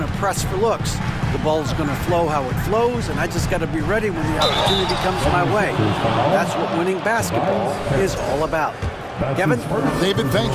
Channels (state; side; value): identical; both; correlation 1.00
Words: to press for looks. The ball's going to flow how it flows, and I just got to be ready when the opportunity comes my way. That's what winning basketball is all about. Kevin? David,